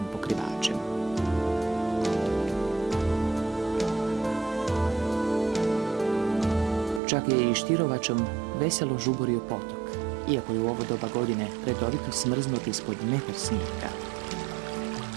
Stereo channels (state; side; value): drops out; left; at 7.0 s